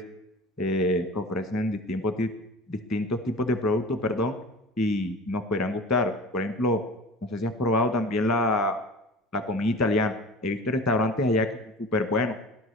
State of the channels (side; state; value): both; normal; correlation 0.38